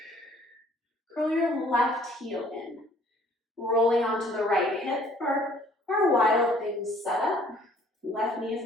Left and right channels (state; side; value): normal; both; correlation 0.57